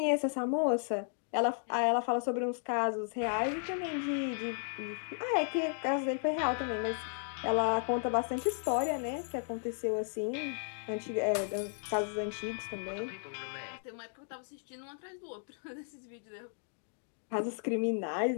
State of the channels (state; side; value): silent; right; digital silence